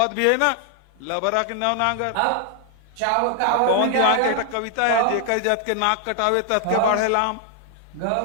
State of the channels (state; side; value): different; both; correlation 0.00